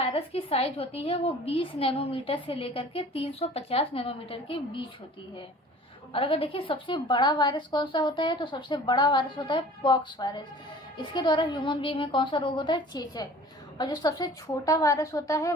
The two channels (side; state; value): both; normal; correlation 0.46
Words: की साइज होती है वो 20 नैनोमीटर से लेकर के 350 नैनोमीटर के बीच होती है। और अगर देखिए सबसे बड़ा वायरस कौन सा होता है, तो सबसे बड़ा वायरस होता है पॉक्स वायरस। इसके द्वारा ह्यूमन बीइंग में कौन सा रोग होता है? चेचक। और जो सबसे छोटा वायरस होता है